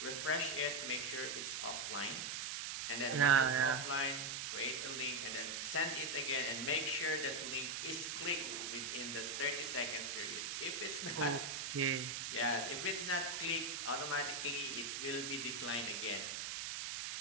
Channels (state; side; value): noise; right; hiss, 3 dB below the sound